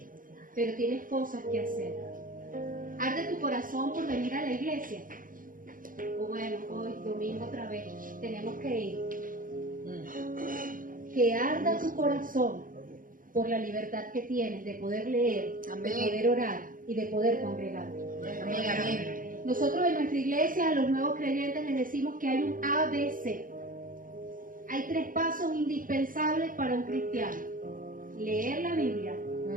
pero tienes cosas que hacer. Arde tu corazón por venir a la iglesia. O bueno, hoy, domingo otra vez, tenemos que ir. Que arda tu corazón por la libertad que tienes de poder leer, Amén. de poder orar y de poder congregar. Amén. Amén. Nosotros en nuestra iglesia, a los nuevos creyentes, les decimos que hay un ABC. Hay 3 pasos indispensables para un cristiano: leer la Biblia,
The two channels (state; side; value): late; left; 0.40 ms